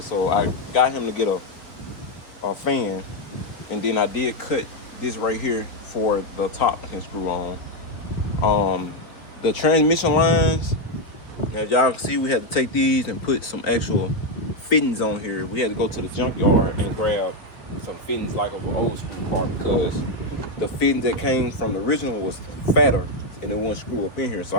So I got him to get a fan. And then I did cut this right here for the top can screw on. The transmission lines, as y'all can see, we had to take these and put some actual fittings on here. We had to go to the junkyard and grab some fittings like of an old school car because the fittings that came from the original was fatter and it wouldn't screw up in here. So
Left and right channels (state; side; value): late; right; 3.5 ms